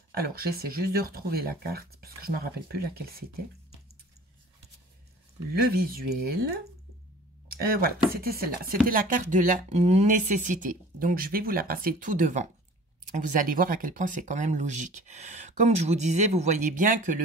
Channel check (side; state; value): both; normal; correlation 0.46